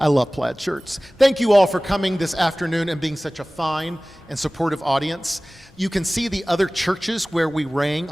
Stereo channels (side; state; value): both; normal; correlation 0.98